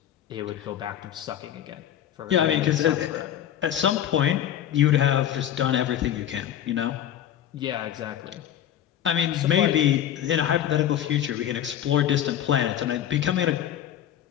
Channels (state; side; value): quieter; right; 10.8 dB